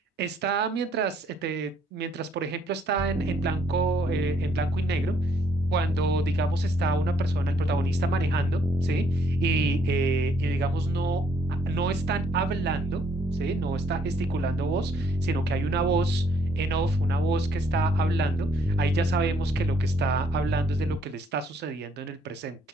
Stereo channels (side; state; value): both; normal; correlation 0.65